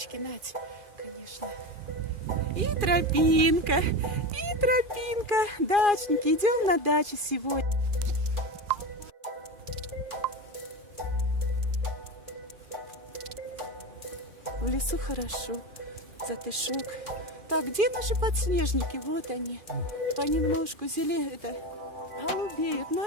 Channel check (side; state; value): left; late; 2.4 ms